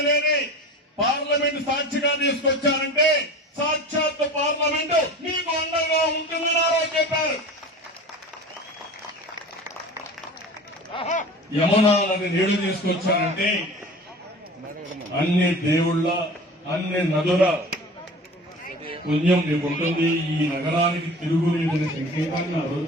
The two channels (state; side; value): normal; both; correlation 0.37